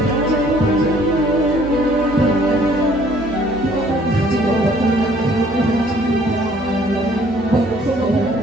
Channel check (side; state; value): left; noise; hum, 18 dB below the sound